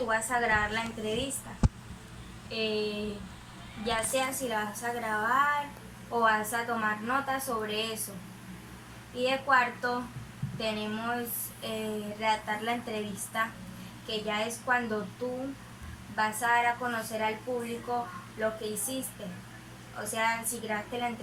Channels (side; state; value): both; identical; correlation 1.00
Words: vas a grabar la entrevista. Ya sea si la vas a grabar o vas a tomar notas sobre eso. Y de cuarto tenemos redactar la entrevista, que ya es cuando tú vas a dar a conocer al público lo que hiciste, o sea, si grabaste la